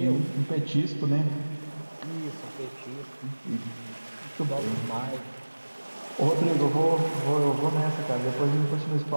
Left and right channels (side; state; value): both; inverted; correlation -1.00